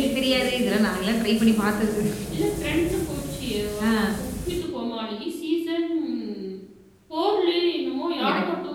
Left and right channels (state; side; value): identical; both; correlation 1.00